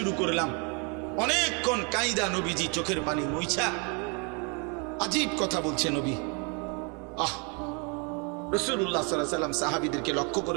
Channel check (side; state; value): left; quieter; 34.7 dB